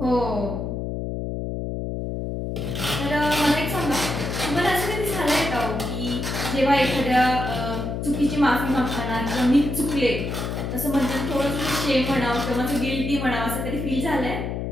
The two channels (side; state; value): left; noise; hum, 3 dB below the sound